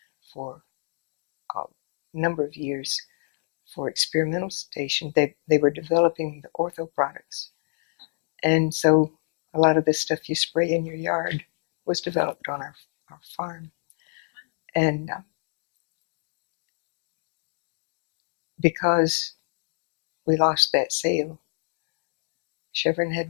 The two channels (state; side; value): silent; right; digital silence